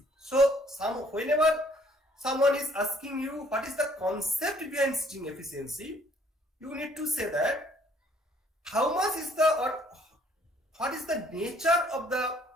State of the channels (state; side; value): normal; both; correlation 0.62